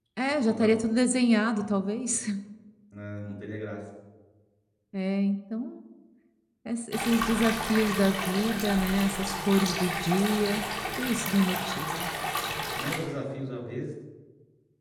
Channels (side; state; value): both; identical; correlation 1.00